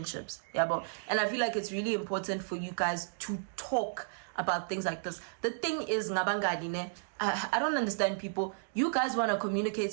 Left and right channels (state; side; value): silent; left; digital silence